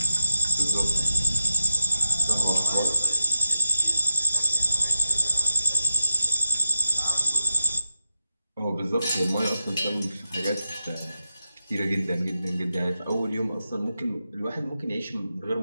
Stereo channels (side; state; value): both; inverted; correlation -0.87